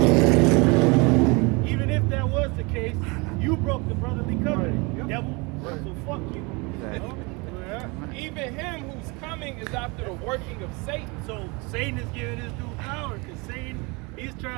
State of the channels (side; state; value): left; quieter; 27.8 dB